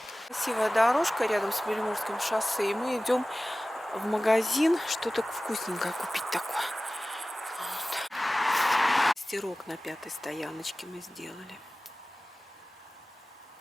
Красивая дорожка рядом с Беломорским шоссе. И мы идем в магазин что-то вкусненькое купить такое. Вот. Стирок на 5-й стояночке мы сделали.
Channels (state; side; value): normal; both; correlation 0.97